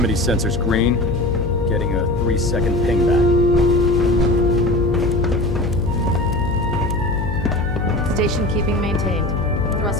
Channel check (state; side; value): noise; left; hum, 3 dB below the sound